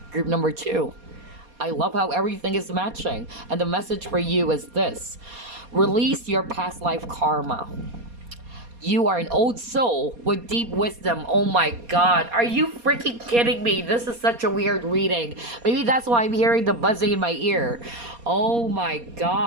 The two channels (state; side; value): late; left; 4.2 ms